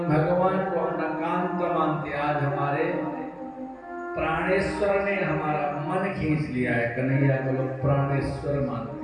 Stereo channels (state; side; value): identical; both; correlation 1.00